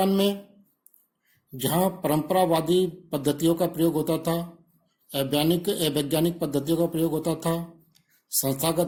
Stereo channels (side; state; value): both; identical; correlation 1.00